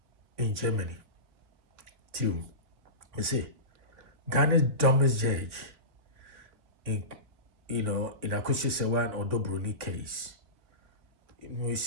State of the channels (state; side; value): late; left; 3.5 ms